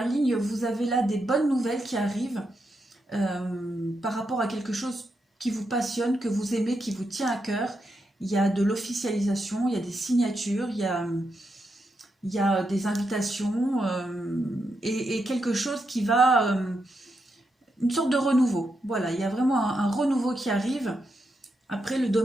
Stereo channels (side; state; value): both; normal; correlation 0.84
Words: ligne, vous avez là des bonnes nouvelles qui arrivent par rapport à quelque chose qui vous passionne, que vous aimez, qui vous tient à cœur. Il y a de l'officialisation, il y a des signatures, il y a des invitations et quelque chose qui va... une sorte de renouveau. Voilà, il y a vraiment un renouveau qui arrive. Après, le